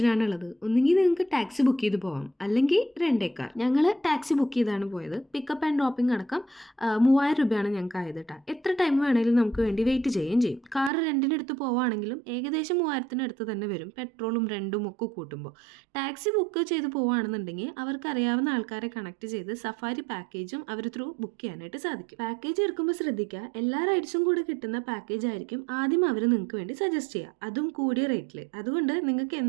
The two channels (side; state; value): left; drops out; at 10.9 s